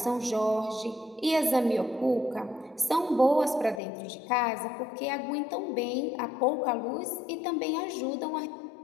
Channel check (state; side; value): drops out; right; at 3.8 s